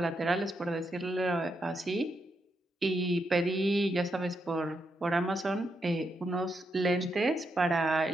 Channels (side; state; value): both; normal; correlation 0.82